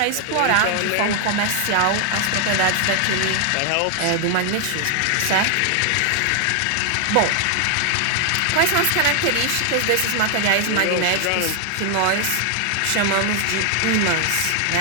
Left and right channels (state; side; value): different; both; correlation 0.00